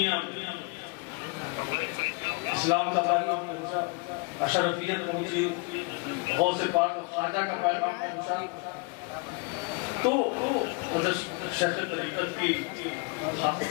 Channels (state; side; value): quieter; right; 29.6 dB